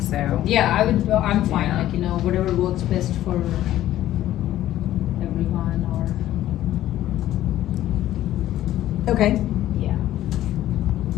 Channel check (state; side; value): quieter; right; 13.5 dB